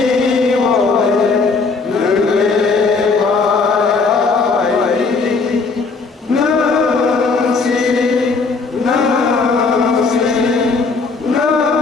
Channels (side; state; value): right; quieter; 4.4 dB